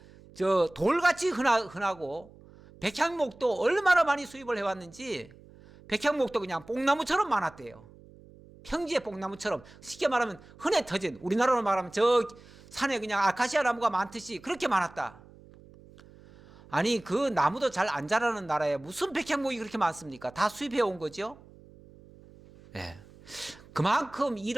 저 돌같이 흔하고 백향목도 얼마나 많이 수입을 해왔는지 백향목도 그냥 뽕나무처럼 많았대요. 평지의 뽕나무처럼 쉽게 말하면 흔해 터진, 우리나라로 말하면 저 산에 그냥 아카시아 나무가 많듯이 그렇게 많았다. 아니 그 나무도 잘 안 자라는 나라에 무슨 백향목이 그렇게 많습니까? 다 수입해 온 거죠. 네. 그만큼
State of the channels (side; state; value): right; noise; hum, 23 dB below the sound